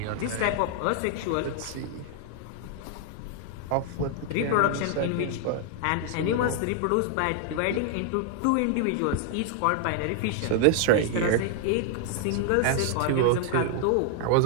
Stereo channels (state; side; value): different; both; correlation 0.00